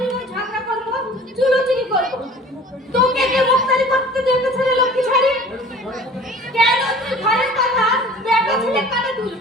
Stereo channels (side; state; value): both; normal; correlation 0.45